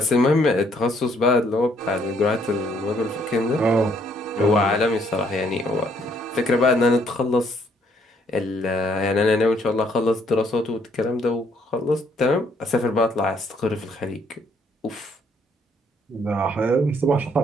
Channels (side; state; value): both; normal; correlation 0.68